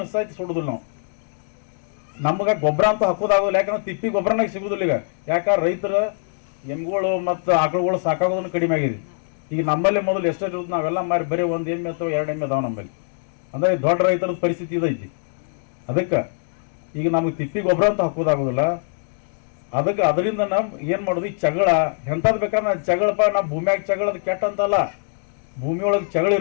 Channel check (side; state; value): right; silent; digital silence